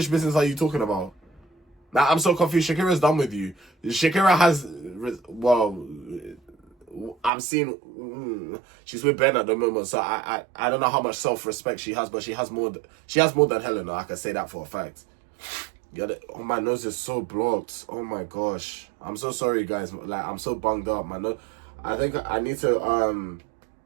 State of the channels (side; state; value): left; drops out; at 7.3 s